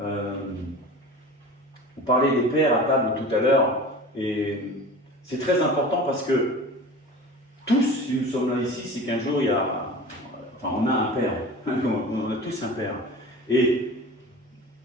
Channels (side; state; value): both; normal; correlation 0.36